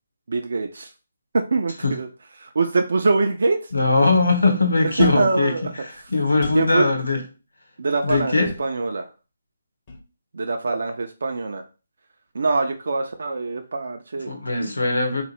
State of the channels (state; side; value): inverted; both; correlation -0.83